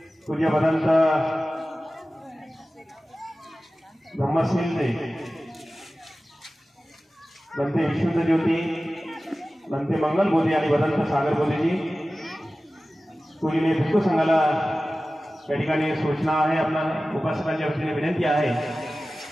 पूज्य भदंत ब्रह्मसिंहजी, भंते विशुद्ध ज्योती, भंते मंगल बोधी आणि भदंत सागर बोधीजी. पूजनीय भिक्खू संघाला या ठिकाणी सूचना आहे, आपल्या उपासकांच्या वतीने विनंती आहे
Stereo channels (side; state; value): both; normal; correlation 0.96